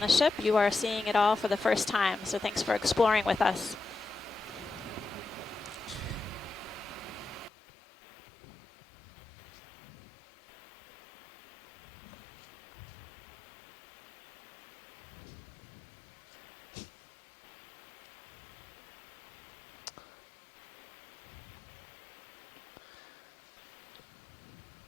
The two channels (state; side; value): drops out; right; at 7.5 s